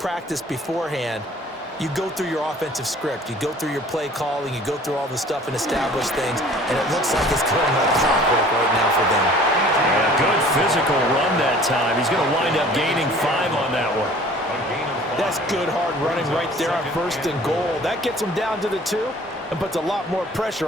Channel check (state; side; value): normal; both; correlation 0.50